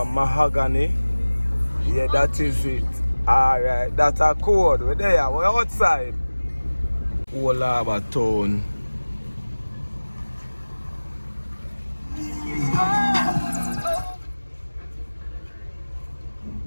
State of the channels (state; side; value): inverted; both; correlation -1.00